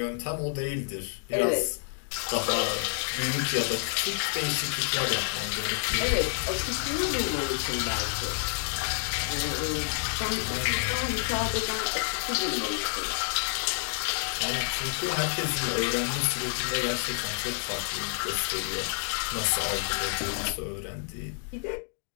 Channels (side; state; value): right; silent; digital silence